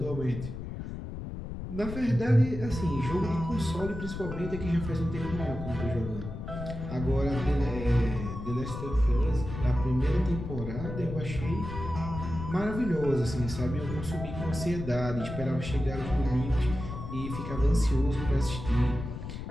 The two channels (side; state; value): left; noise; rumble, 8 dB below the sound